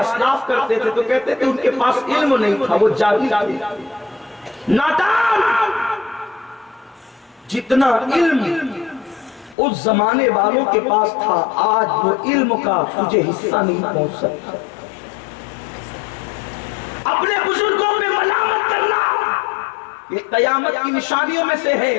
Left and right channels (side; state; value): right; drops out; at 9.6 s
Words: کرتے تھے تو کہتے تھے ان کے پاس علم نہیں تھا، وہ جاہل تھے، نادان۔ جتنا علم اس زمانے والوں کے پاس تھا آج وہ علم کا تجھے حصہ نہیں پہنچ سکتا۔ اپنے بزرگوں پہ ملامت کرنا یہ قیامت کی نشانیوں میں سے ہے۔